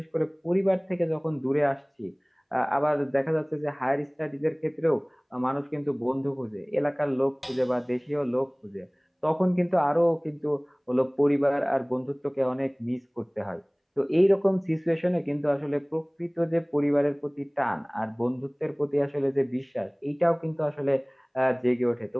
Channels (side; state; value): both; identical; correlation 1.00